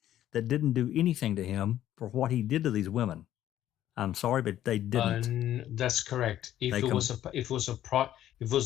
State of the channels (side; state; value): right; quieter; 12.2 dB